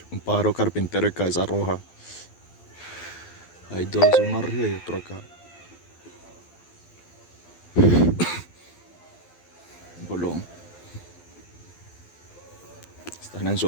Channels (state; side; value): late; right; 12 ms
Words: Un pájaro carpintero de cabeza roja. Hay dos, uno arriba y otro acá. Bolón. Están en